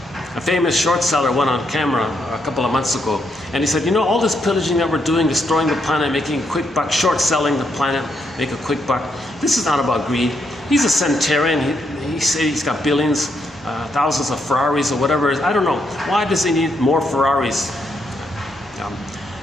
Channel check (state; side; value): normal; both; correlation 0.78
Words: a famous short seller went on camera a couple of months ago, and he said, you know, all this pillaging that we're doing, destroying the planet, making a quick buck, short selling the planet, make a quick buck. This is not about greed. He's a centenarian. He said he's got billions, thousands of Ferraris or whatever it is. I don't know. Why does he need more Ferraris?